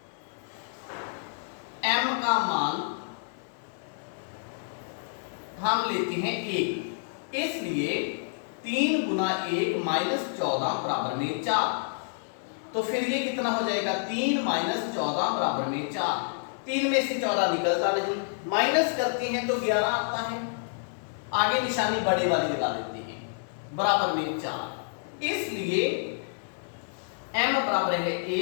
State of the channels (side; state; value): right; silent; 59 dB below the other